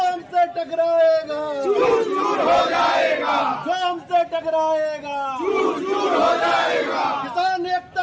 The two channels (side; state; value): both; identical; correlation 1.00